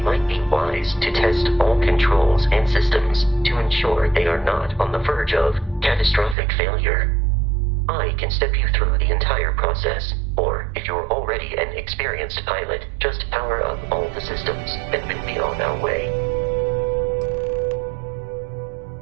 might be wise to test all controls and systems to ensure they are not on the verge of catastrophic failure. I can step you through the entire process, or if you're already an experienced pilot, just power up all the systems and we'll be on our way.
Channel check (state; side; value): drops out; left; at 6.4 s